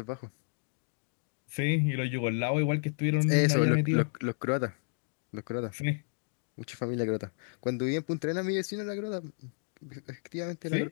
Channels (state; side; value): silent; right; digital silence